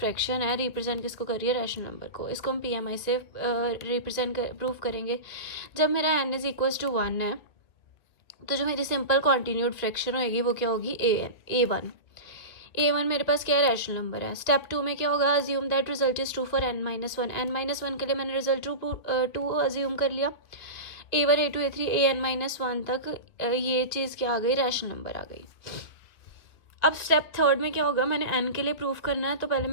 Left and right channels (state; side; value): late; right; 2.2 ms